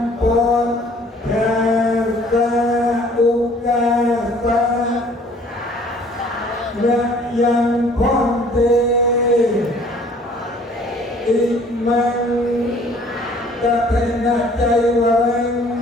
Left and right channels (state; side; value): normal; both; correlation 0.55